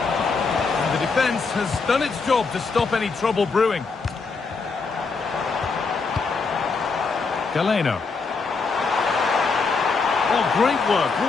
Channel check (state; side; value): quieter; right; 4.6 dB